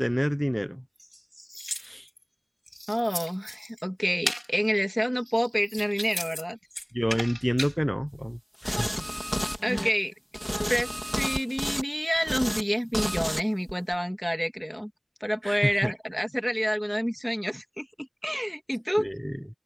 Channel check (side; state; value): both; identical; correlation 1.00